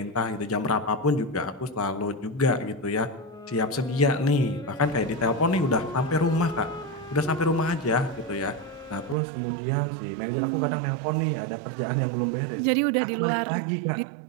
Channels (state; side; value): drops out; left; at 9.2 s